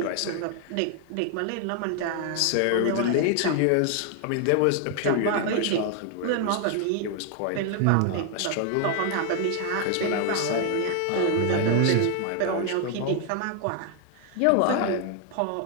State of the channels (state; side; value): different; both; correlation 0.00